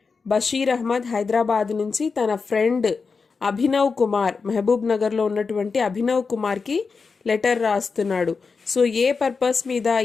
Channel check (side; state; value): right; quieter; 4.9 dB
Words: బషీర్ అహ్మద్ హైదరాబాద్ నుంచి తన ఫ్రెండ్ అభినవ్ కుమార్, మహబూబ్ నగర్లో ఉన్నటువంటి అభినవ్ కుమార్కి లెటర్ రాస్తున్నాడు. సో ఏ పర్పస్ మీద,